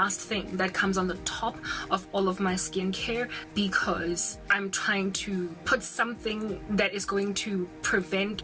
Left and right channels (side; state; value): both; identical; correlation 1.00